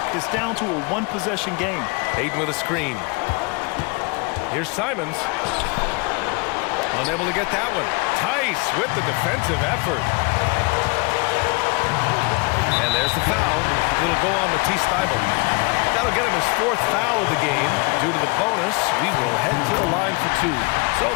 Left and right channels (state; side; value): quieter; right; 30.0 dB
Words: It's down to a 1-possession game. Ayton with a screen. Here's Simons. Unable to get that one. Tice with the defensive effort. And there's the foul. It'll go on Matisse Thybulle. That'll get him his 4th foul of the game. Due to the bonus, we will head to the line for 2. So